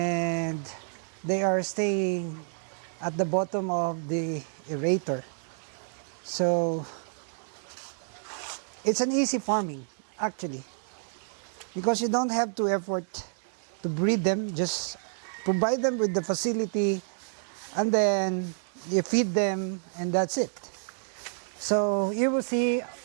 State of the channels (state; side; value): silent; left; 58 dB below the other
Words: they are staying at the bottom of the aerator. So it's an easy farming actually, because you don't have to effort to breed them. Just provide them with the facility, and then you feed them, and that's it. So you will see